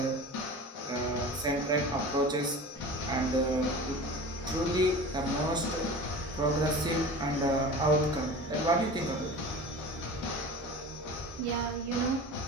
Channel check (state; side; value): normal; both; correlation 0.36